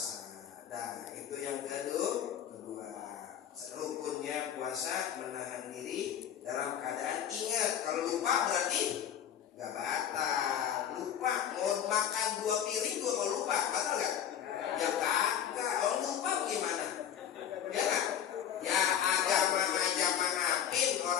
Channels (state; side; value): quieter; right; 9.6 dB